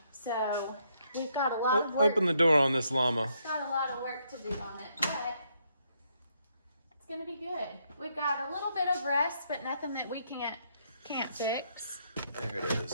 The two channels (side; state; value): both; inverted; correlation -0.74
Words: So we've got a lot of work. Open the door on this llama. Got a lot of work to do on it, but it's gonna be good. We've got a little bit of rust, but nothing that we can't fix. There it